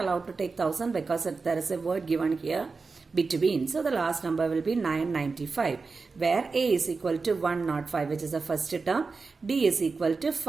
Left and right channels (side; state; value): left; quieter; 4.3 dB